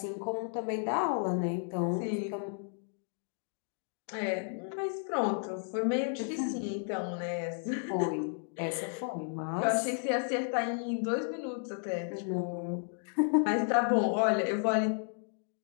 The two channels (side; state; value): right; silent; 56 dB below the other